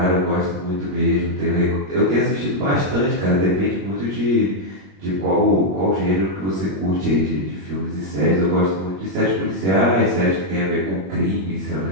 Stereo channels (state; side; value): late; left; 21 ms